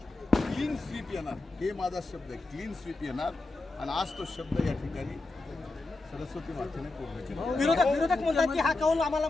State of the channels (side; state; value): right; quieter; 3.2 dB